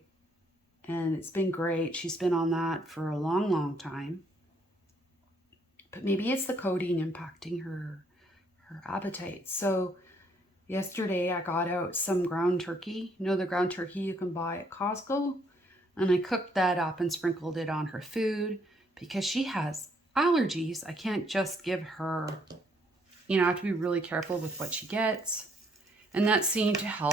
And it's been great. She's been on that for a long, long time. But maybe it's the codeine impacting her appetite. So yesterday I got out some ground turkey. You know the ground turkey you can buy at Costco? And I cooked that up and sprinkled it on her food because she has allergies. I can't just give her, I have to be really careful with what she gets. And that seemed to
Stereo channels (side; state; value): both; normal; correlation 0.68